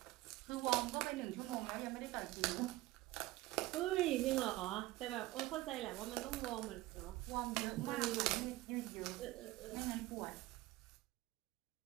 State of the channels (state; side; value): quieter; left; 18.0 dB